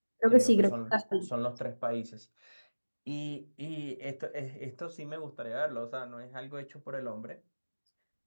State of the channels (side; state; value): both; inverted; correlation -1.00